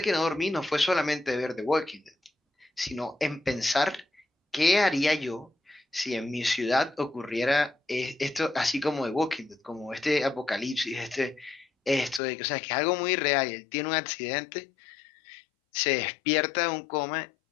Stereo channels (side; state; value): right; drops out; at 12.2 s